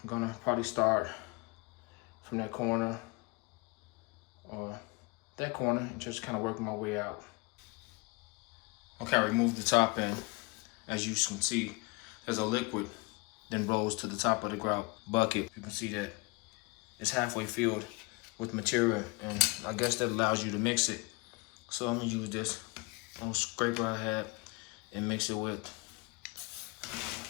gonna probably start from that corner or that corner and just kind of work my way out. Okay, I removed the top end. As you can see, there's a liquid then rolls to the top of the grout bucket. You can see that it's halfway filled with material, and I guess that allows you to mix it. So I'm gonna use this little scraper I had and mix it with.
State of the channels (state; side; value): quieter; right; 26.9 dB